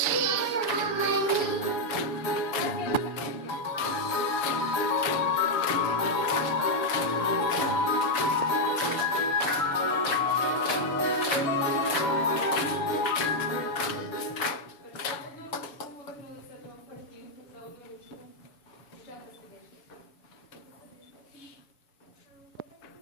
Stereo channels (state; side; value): late; right; 7.0 ms